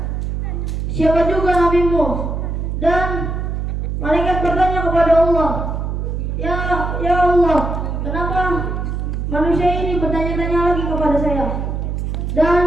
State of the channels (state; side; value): noise; right; hum, 2 dB below the sound